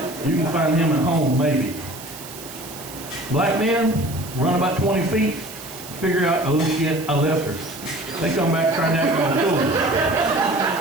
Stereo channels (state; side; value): noise; right; hiss, 14 dB below the sound